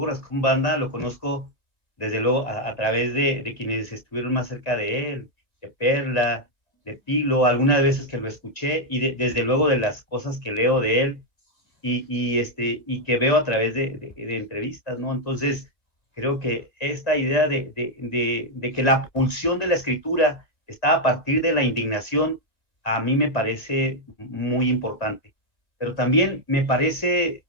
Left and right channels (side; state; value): right; late; 2.0 ms